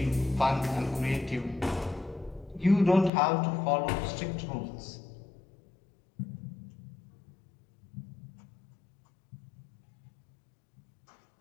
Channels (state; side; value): drops out; right; at 3.1 s